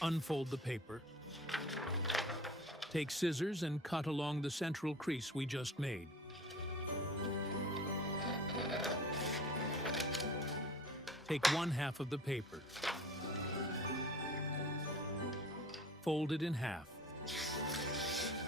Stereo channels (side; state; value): both; normal; correlation 0.42